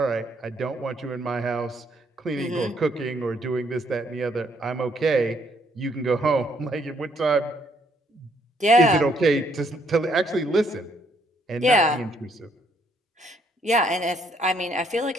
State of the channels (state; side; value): normal; both; correlation 0.69